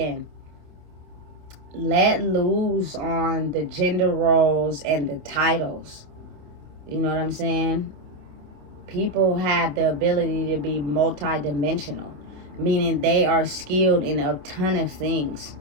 let loose on the gender roles and the titles. You know what I'm saying? People have the ability to be multidimensional, meaning they are skilled in a ton of things,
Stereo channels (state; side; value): late; left; 27 ms